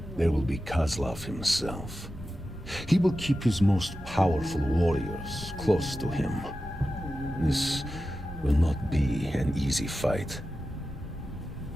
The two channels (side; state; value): both; normal; correlation 0.93